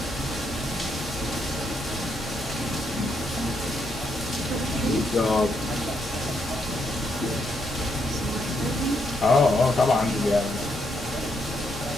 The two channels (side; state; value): both; normal; correlation 0.77